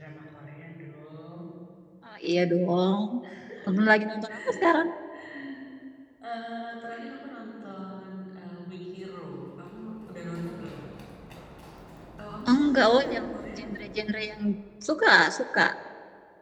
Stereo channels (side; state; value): both; identical; correlation 1.00